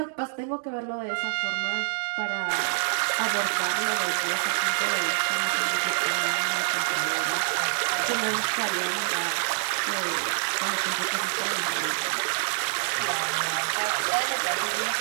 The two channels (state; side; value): silent; left; digital silence